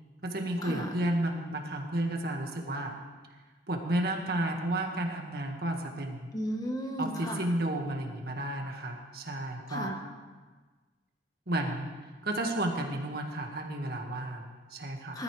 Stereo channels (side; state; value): both; normal; correlation 0.59